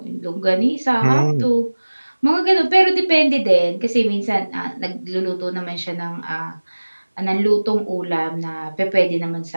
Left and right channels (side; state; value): both; inverted; correlation -1.00